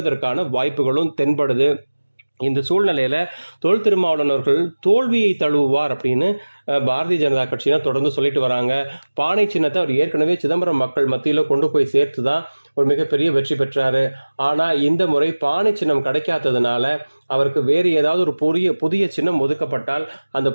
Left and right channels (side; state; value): both; inverted; correlation -1.00